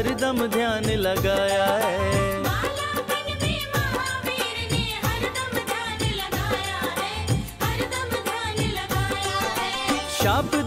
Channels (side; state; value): both; identical; correlation 1.00